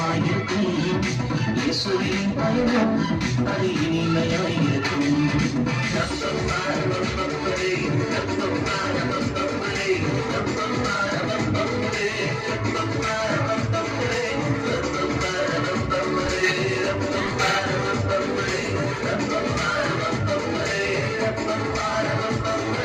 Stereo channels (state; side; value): identical; both; correlation 1.00